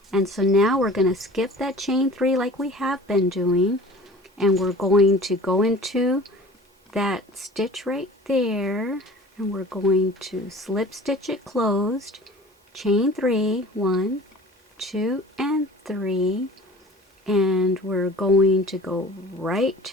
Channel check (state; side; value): normal; both; correlation 0.44